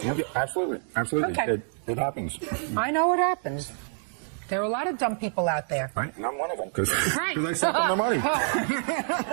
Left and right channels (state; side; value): silent; left; digital silence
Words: Yeah, absolutely. Absolutely. Okay. It happens. I know it happens. There are a lot of dumb people out there. Right, and I'm one of them, because right. I sent them the money.